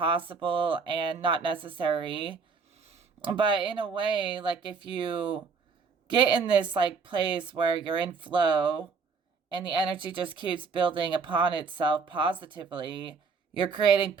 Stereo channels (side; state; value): left; quieter; 5.2 dB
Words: and not necessary. But in a way, like if you get in this like place where you're in flow and the energy just keeps building upon itself positively, you're creating